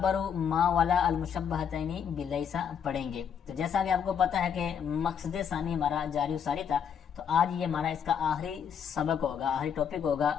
ما ولا المشبہتین بلیسا پڑھیں گے۔ تو جیسا کہ آپ کو پتہ ہے کہ مقصد ثانی ہمارا جاری ساری تھا، تو آج یہ ہمارا اس کا آخری سبق ہوگا، آخری ٹاپک ہوگا۔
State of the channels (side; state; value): right; quieter; 7.8 dB